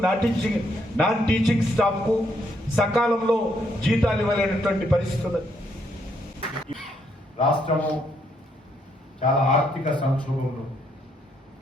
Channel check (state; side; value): normal; both; correlation 0.73